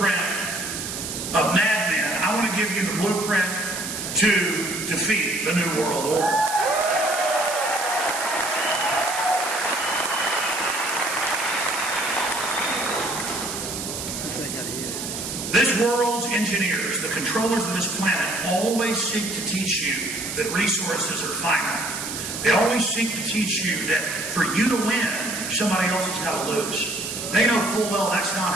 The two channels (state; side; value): noise; right; hiss, 6 dB below the sound